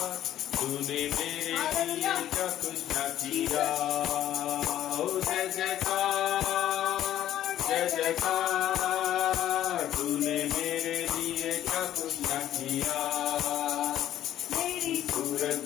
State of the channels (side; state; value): right; quieter; 12.1 dB